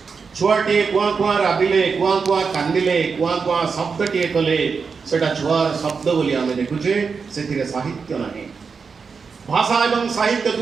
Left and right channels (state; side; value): quieter; left; 5.4 dB